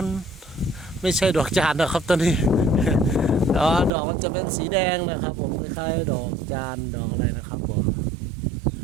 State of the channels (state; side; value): drops out; left; at 3.9 s